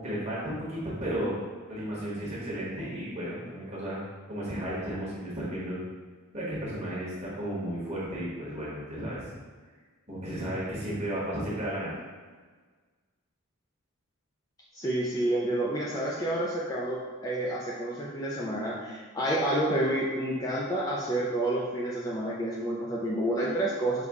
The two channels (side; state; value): both; normal; correlation 0.48